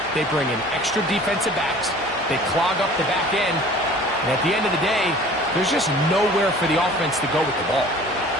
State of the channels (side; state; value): both; normal; correlation 0.47